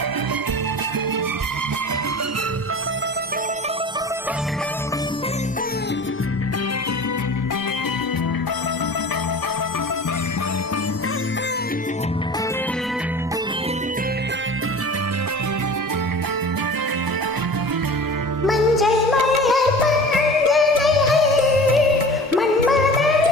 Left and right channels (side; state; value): both; normal; correlation 0.38